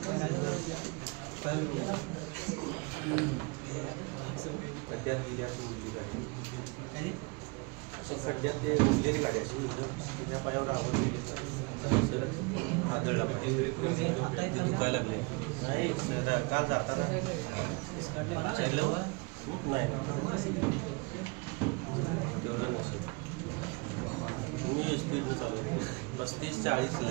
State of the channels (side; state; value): left; quieter; 29.0 dB